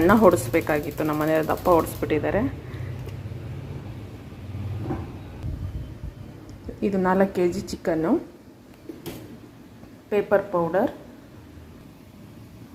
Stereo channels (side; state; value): both; identical; correlation 1.00